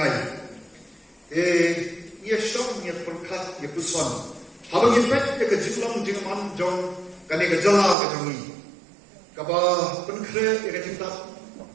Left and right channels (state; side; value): drops out; left; at 8.0 s